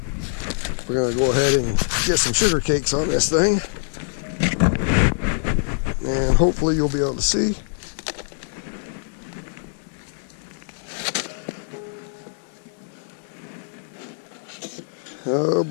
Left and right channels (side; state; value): right; silent; digital silence